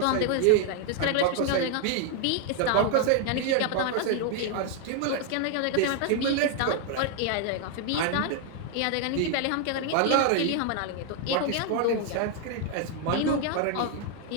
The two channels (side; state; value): both; different; correlation 0.00